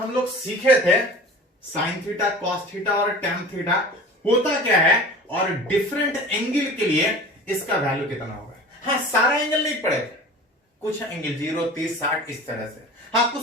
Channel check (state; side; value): normal; both; correlation 0.39